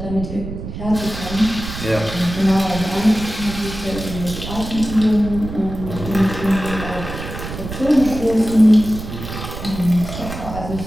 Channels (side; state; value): right; noise; rumble, 9 dB below the sound